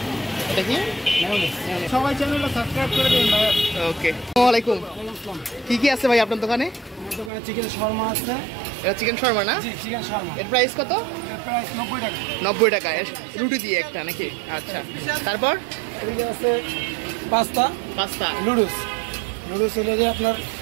দেখি সবাই চ্যানেলটা সাবস্ক্রাইব করে দিন ভাই। ওকে আসসালামু আলাইকুম। কি কি আছে ভাই আপনার দোকানে? আমার দোকানে চিকেন শর্মা আছে। এটা চিকেন শর্মা না? জি চিকেন শর্মা। এর প্রাইস কত? এর প্রাইস 90 টাকা। 90 টাকা রুটি দিয়ে একটা নাকি? আচ্ছা তারপর এদিকে আছে পাস্তা নুডলস হলো যে আপনার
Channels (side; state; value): left; drops out; at 7.3 s